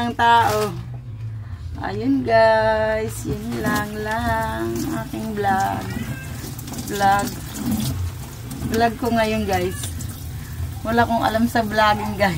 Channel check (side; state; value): both; identical; correlation 1.00